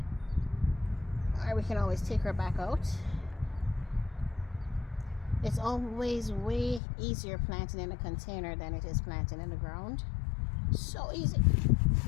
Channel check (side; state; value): right; drops out; at 6.8 s